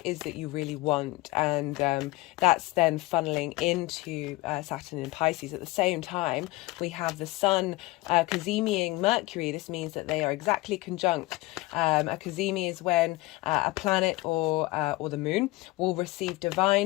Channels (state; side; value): quieter; right; 21.2 dB